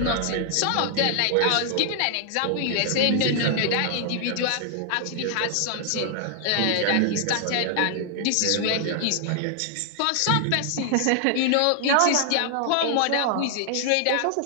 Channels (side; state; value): both; different; correlation 0.00